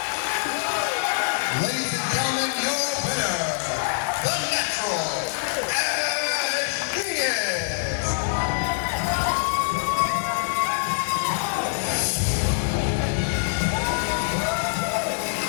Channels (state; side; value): silent; right; 62 dB below the other